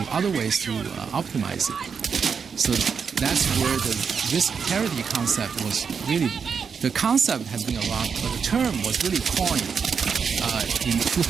optimize it? So that's where the risk parity concept was really. The concept has been around, but the term was really coined in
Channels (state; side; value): quieter; left; 6.2 dB